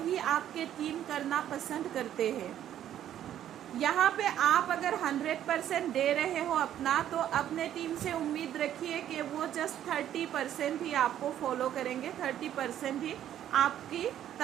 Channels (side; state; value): left; quieter; 11.1 dB